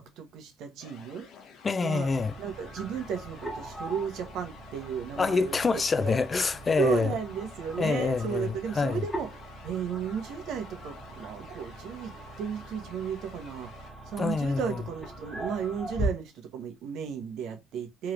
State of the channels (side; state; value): both; normal; correlation 0.73